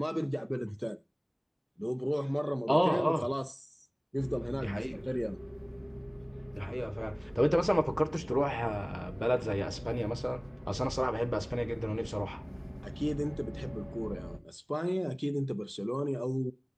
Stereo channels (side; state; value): both; identical; correlation 1.00